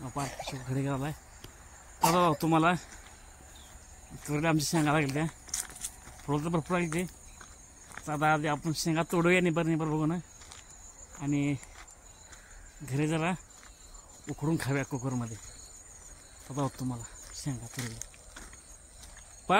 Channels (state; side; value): identical; both; correlation 1.00